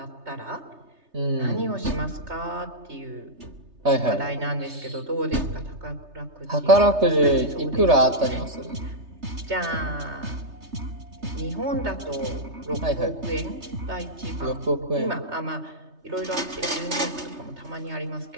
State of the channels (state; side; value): late; left; 3.3 ms